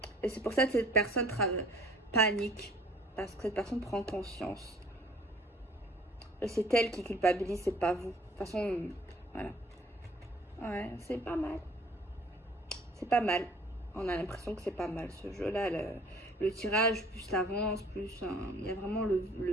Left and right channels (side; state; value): both; normal; correlation 0.54